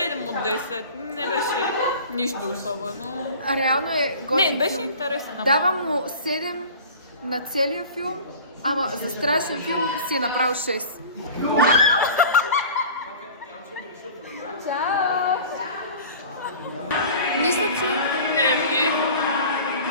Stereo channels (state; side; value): inverted; both; correlation -0.40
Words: от 10. Не беше нищо особено. А реално е готин Не, беше филм. интересен. Давам му 7 на целия филм, ама за страшен филм си е направил 6. Чао! Мисля, че... Не.